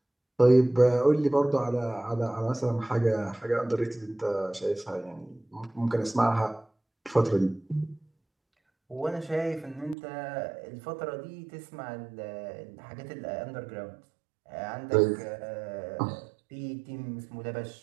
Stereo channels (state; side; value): drops out; left; at 10.0 s